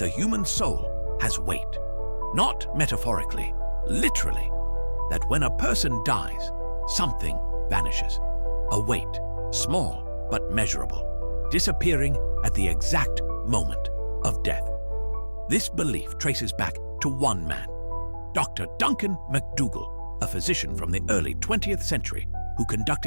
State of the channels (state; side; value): inverted; both; correlation -1.00